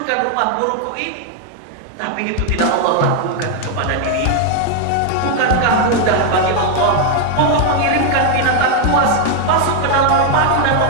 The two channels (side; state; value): both; different; correlation 0.00